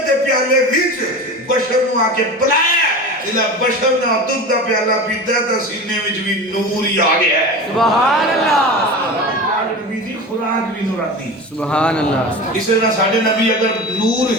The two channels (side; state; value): both; normal; correlation 0.30